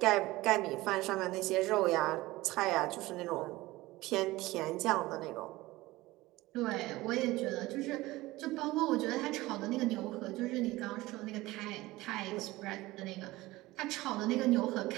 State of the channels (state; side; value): quieter; left; 19.0 dB